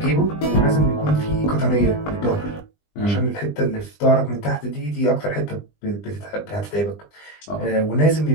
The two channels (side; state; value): right; late; 20 ms